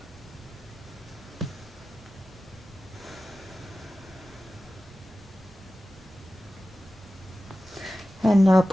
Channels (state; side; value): normal; both; correlation 0.95